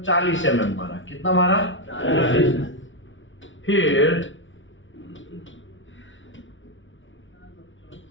40 mm मारा। कितना मारा? 40।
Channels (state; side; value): late; right; 0.56 ms